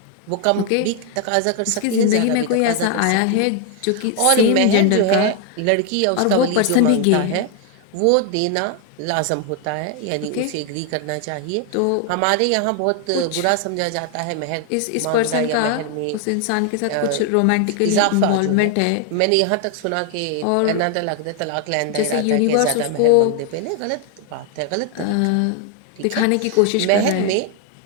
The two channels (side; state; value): both; different; correlation 0.00